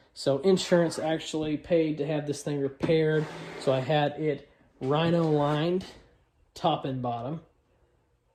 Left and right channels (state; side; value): identical; both; correlation 1.00